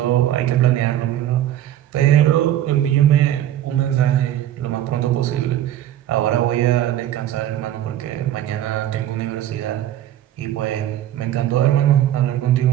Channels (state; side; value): quieter; left; 12.2 dB